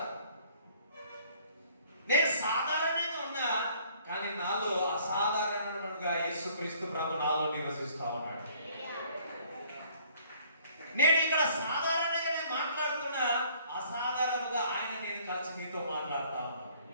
నేను సాధారణంగా ఉన్నా, కానీ నాలో అసాధారణంగా యేసుక్రీస్తు ప్రభు నాలో నివసిస్తా ఉన్నాడు. నేను ఇక్కడ సాధారణంగానే మాట్లాడుతున్నా, అసాధారణంగా ఆయన నేను కలిసి మీతో మాట్లాడుతా ఉన్నా.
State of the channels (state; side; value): inverted; both; correlation -0.59